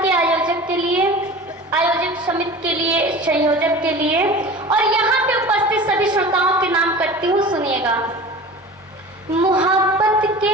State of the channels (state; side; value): normal; both; correlation 0.37